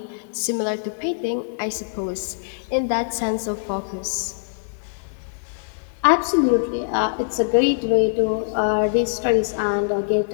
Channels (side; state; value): right; silent; 63 dB below the other